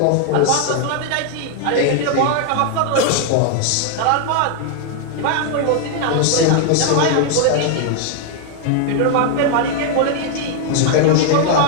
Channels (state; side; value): different; both; correlation 0.00